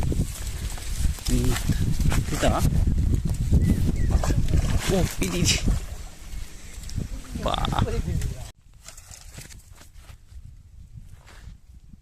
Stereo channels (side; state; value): both; identical; correlation 1.00